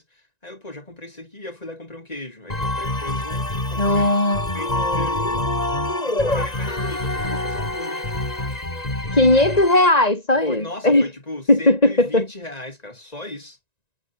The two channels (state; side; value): late; right; 1.9 ms